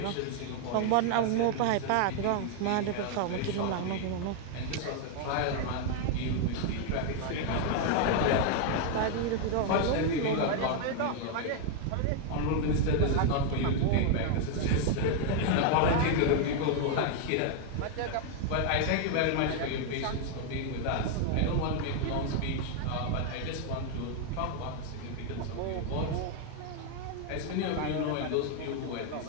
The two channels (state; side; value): different; both; correlation 0.00